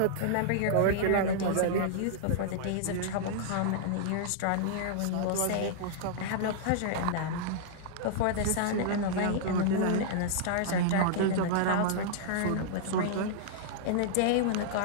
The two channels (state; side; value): different; both; correlation -0.02